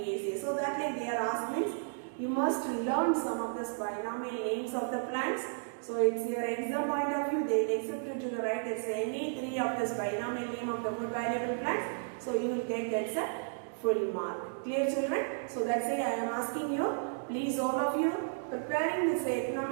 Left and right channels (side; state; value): left; silent; digital silence